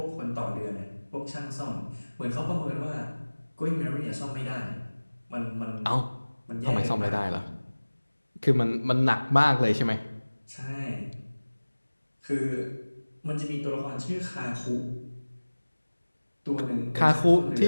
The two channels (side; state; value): both; inverted; correlation -1.00